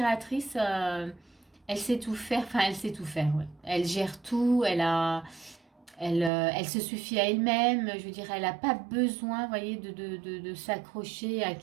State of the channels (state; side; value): drops out; left; at 6.3 s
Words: elle sait tout faire, enfin elle sait tout faire, ouais. Elle gère tout, elle se suffit à elle-même, je veux dire, elle n'a pas besoin, voyez, de s'accrocher à